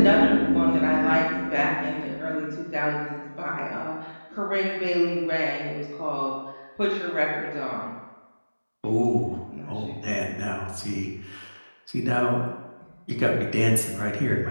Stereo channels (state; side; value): inverted; both; correlation -1.00